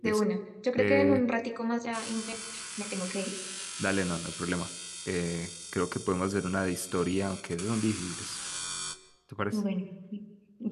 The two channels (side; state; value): both; identical; correlation 1.00